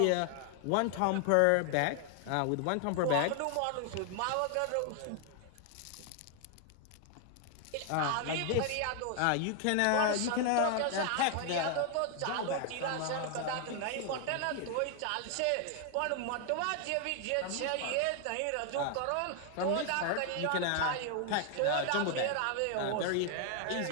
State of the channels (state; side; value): different; both; correlation 0.00